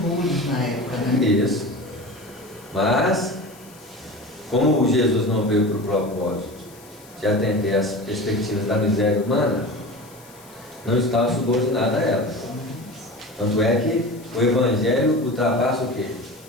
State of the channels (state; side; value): noise; left; hiss, 24 dB below the sound